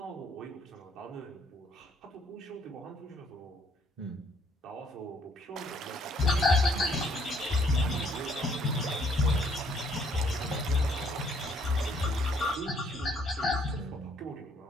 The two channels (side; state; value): both; normal; correlation 0.65